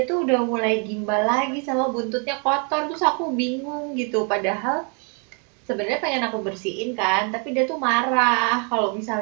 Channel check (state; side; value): quieter; left; 37.7 dB